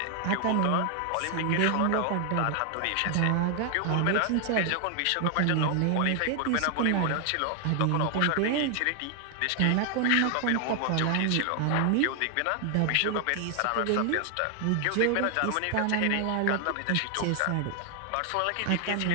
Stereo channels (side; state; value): both; different; correlation 0.00